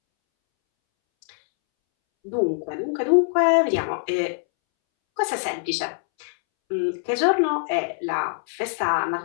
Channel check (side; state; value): right; silent; 63 dB below the other